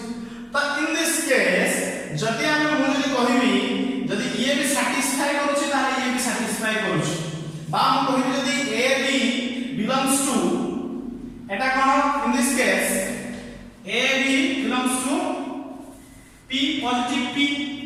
তো ইন দিস কেস যদি আমি মু যদি কহিবি যদি ইয়ে বি স্যাটিসফাই করুছি তাহলে ইয়ে বি স্যাটিসফাই করুছি বা মু কহিবি যদি এ বি বিলংস টু এটা কোন in this case A B belongs to P positive P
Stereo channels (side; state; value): both; identical; correlation 1.00